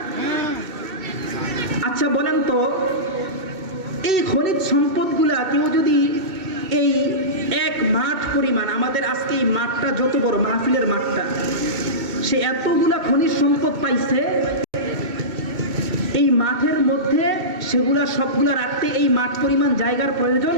আচ্ছা বলেন তো, এই খনিজ সম্পদগুলা কেউ যদি এই এক মাঠ পরিমাণ, আমাদের আজকে এই মাঠটা যত বড়, মাহফিলের মাঠটা, সে এতগুলা খনিজ সম্পদ পাইছে, এই মাঠের মধ্যে সেগুলা সবগুলা রাখতে এই মাঠ পরিমাণ জায়গার প্রয়োজন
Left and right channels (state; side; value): late; left; 2.7 ms